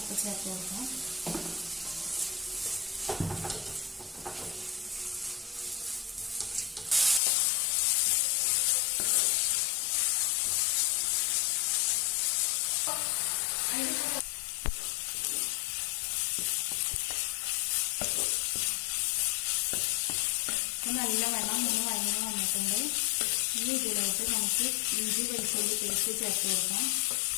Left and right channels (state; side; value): drops out; right; at 7.2 s